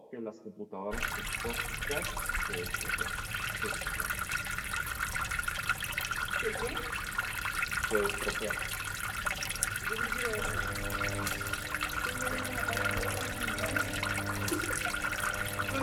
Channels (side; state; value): both; identical; correlation 1.00